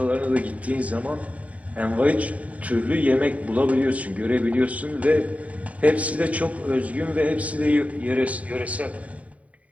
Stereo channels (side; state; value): left; late; 0.068 ms